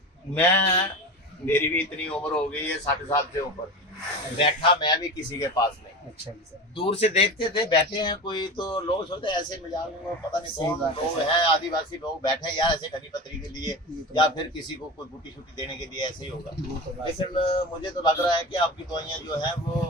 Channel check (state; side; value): normal; both; correlation 0.28